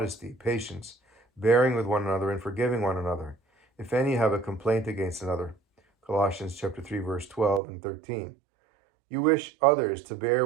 patience, bearing with one another and forgiving one another, if any have a complaint against another. Colossians chapter 3, verse 12 and 13. You wish others to bear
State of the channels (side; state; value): left; drops out; at 7.6 s